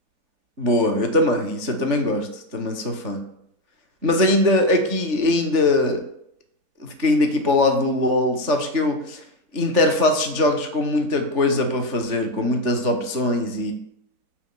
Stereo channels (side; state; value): left; late; 3.5 ms